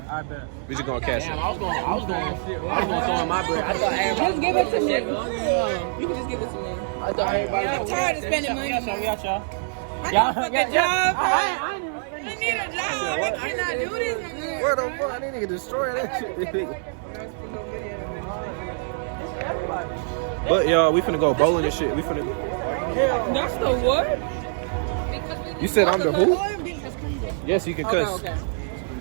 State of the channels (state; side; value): silent; left; digital silence